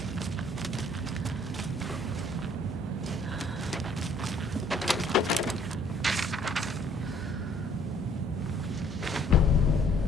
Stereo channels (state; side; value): normal; both; correlation 0.60